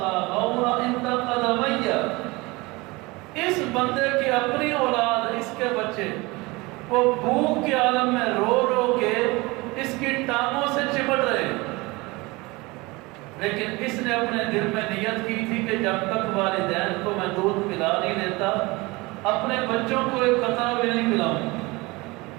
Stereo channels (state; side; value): quieter; left; 23.6 dB